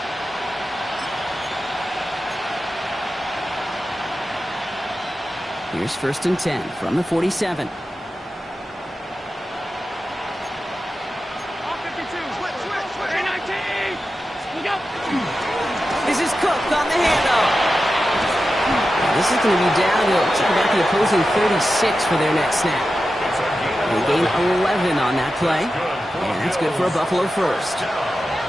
Here's 1st and 10 from the 47. This is Cook on the handoff. This is going to be down to about the opposing 36 for their next snap. They gain 11 on that play, and that's good for a Buffalo first.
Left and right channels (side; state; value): both; normal; correlation 0.92